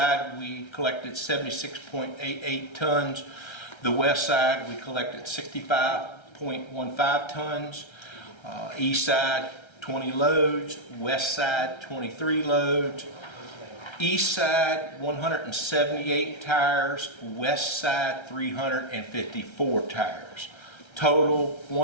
we collected 76.88 tons. The west side we collected 65.15 tons. East side 20 loads, west side 23 loads. East side 178 tires, west side 354 tires. Total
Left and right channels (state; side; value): late; right; 1.3 ms